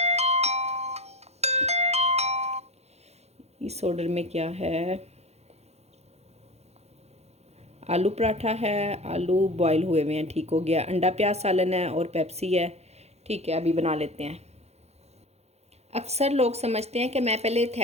इस ऑर्डर में क्या है, आलू पराठा है, आलू बॉयल हुए हुए हैं, ठीक हो गया। अंडा प्याज सालन है और पेप्सी है, ठीक है। अभी बना लेते हैं। अक्सर लोग समझते हैं कि मैं पहले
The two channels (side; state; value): left; late; 0.31 ms